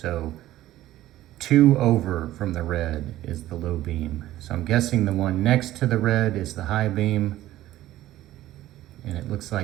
2 over from the red is the low beam. So I'm guessing the one next to the red is the high beam. And it looks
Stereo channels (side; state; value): left; quieter; 14.7 dB